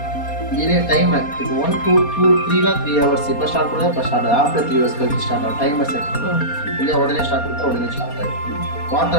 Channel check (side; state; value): right; late; 4.2 ms